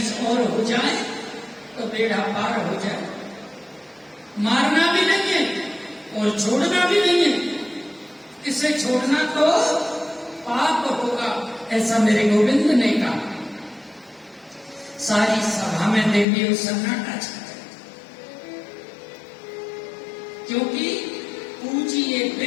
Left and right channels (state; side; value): drops out; right; at 16.2 s